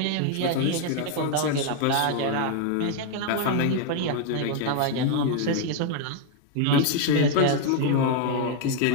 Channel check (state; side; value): different; both; correlation 0.00